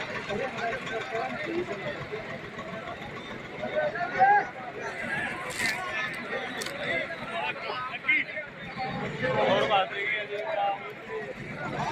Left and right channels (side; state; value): both; identical; correlation 1.00